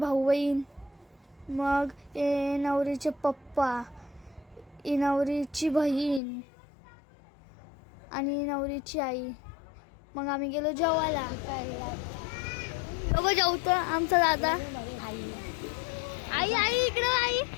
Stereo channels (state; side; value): drops out; right; at 6.2 s